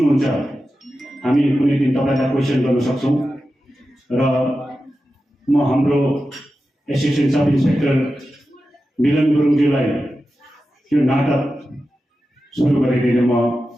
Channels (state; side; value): normal; both; correlation 0.92